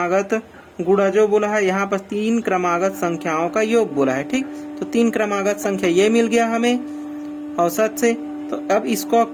गुणा जो बोला है, यहाँ पर 3 क्रमागत संख्याओं का योग बोला है। ठीक, तो 3 क्रमागत संख्या ये मिल गया हमें औसत से। तो अब इसको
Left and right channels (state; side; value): identical; both; correlation 1.00